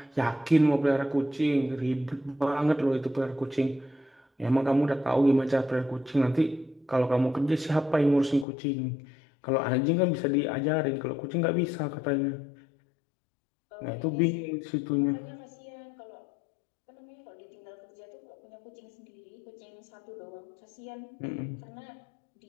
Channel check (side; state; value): right; drops out; at 8.5 s